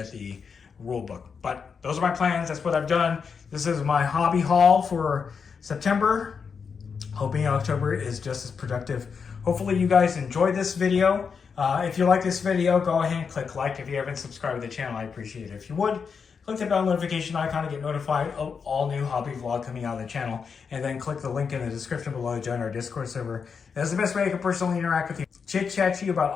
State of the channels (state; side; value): quieter; right; 5.9 dB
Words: the rule book, but those are my plans. That's what I've done. This is my hobby haul for September. Hoping October is just as productive. Hopefully you guys enjoyed this video. If you like this video, go ahead and click like. If you haven't subscribed to the channel, I appreciate it. If you would, click the bell notification icon to get notified of all new hobby vlog coming out of the channel, and then click the link in the description below to join our Discord server. That's the best way I can personally interact with you, chit-chat to you about